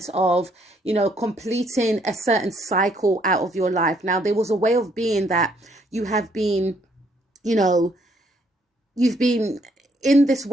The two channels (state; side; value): normal; both; correlation 0.68